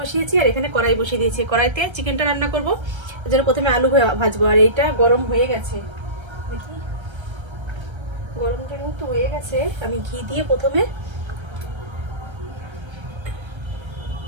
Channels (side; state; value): left; late; 1.3 ms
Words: বসিয়েছি আর এখানে কড়াই বসিয়ে দিয়েছি। কড়াইতে চিকেনটা রান্না করবো, এই জন্য প্রথমে আলু ভাজবো। আর এইটা গরম হয়ে গেছে, দেখি গরমটার মতো হয়ে গেছে। আমি ঘি দিয়ে প্রথমে